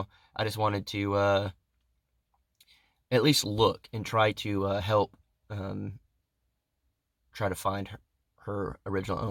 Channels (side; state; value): both; identical; correlation 1.00